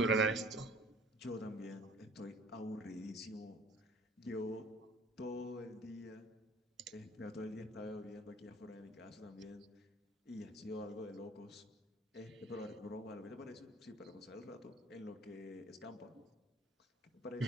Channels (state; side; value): normal; both; correlation 0.50